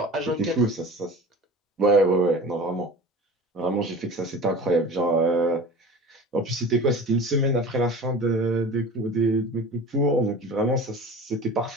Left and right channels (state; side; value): normal; both; correlation 0.38